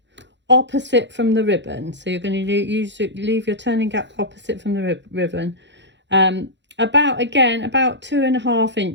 opposite from the ribbon. So you're going to leave your turning gap opposite from the ribbon, about 2.5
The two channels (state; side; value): late; left; 0.52 ms